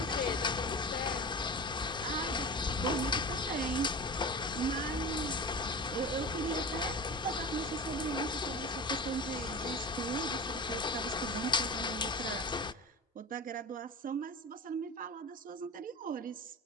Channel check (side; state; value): both; normal; correlation 0.32